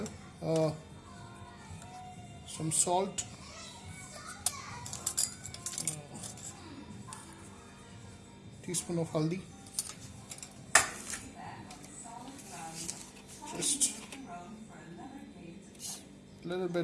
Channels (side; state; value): both; identical; correlation 1.00